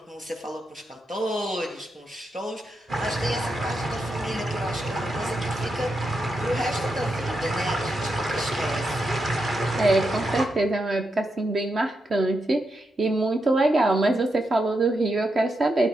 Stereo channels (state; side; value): normal; both; correlation 0.85